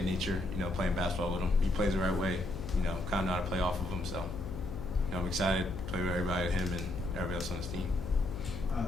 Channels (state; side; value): noise; left; hum, 8 dB below the sound